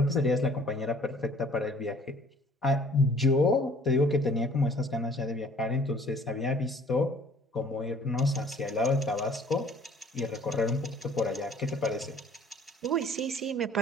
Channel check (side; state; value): both; normal; correlation 0.54